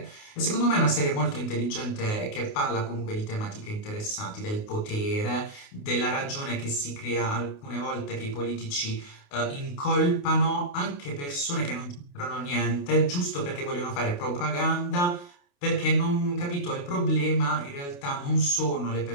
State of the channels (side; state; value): right; late; 28 ms